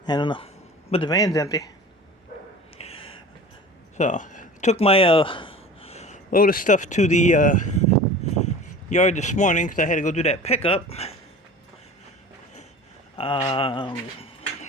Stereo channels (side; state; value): both; normal; correlation 0.39